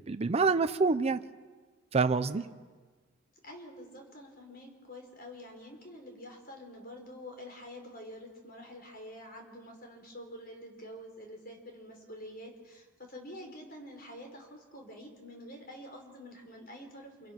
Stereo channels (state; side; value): quieter; left; 3.6 dB